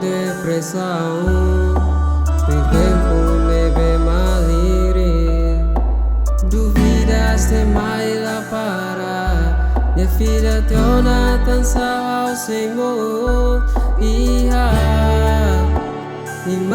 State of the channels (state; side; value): identical; both; correlation 1.00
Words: tem tempo leve malire duvidas de mais lá para minha filha te ona dança ao Senhor e